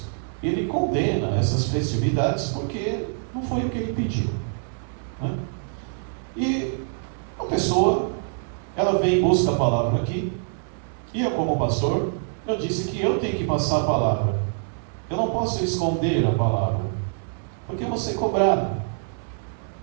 Ele condena essas festividades porque não foi o que Ele pediu, né? E a pessoa, ela vem e busca a palavra aqui, e eu como pastor, eu disse que eu tenho que passar a palavra. Eu não posso esconder a palavra, porque eu vou ser cobrado.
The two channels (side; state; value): left; silent; 62 dB below the other